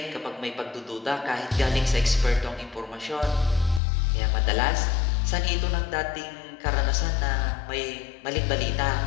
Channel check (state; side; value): drops out; right; at 3.8 s